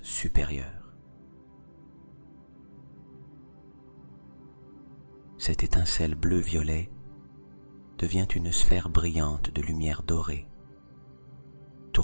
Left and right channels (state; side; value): inverted; both; correlation -1.00